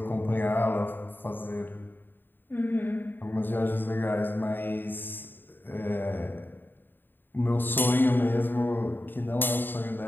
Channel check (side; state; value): right; late; 0.094 ms